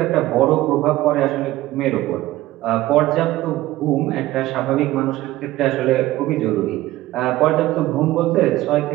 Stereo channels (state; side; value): quieter; left; 16.5 dB